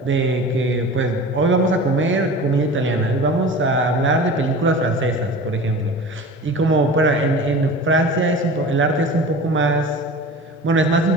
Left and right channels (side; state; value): both; normal; correlation 0.36